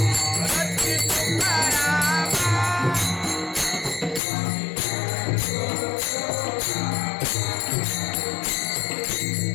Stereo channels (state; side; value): drops out; right; at 4.2 s